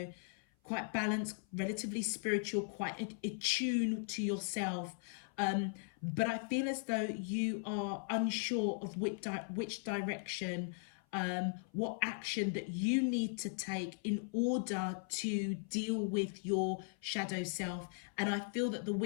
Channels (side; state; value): right; silent; 52 dB below the other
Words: quite balanced, relatively spiritual, quite attuned to yourself. But I feel as though you are unsure of which direction, what action that you need to take in order to deal with your shadow self. And I feel that the